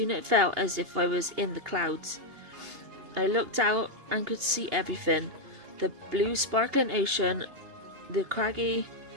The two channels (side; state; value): left; late; 2.8 ms